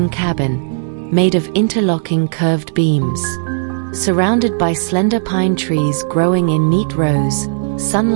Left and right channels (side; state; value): left; silent; digital silence